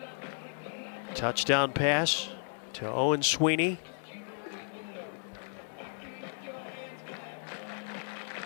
Touchdown pass to Owen Sweeney.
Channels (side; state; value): right; silent; 55 dB below the other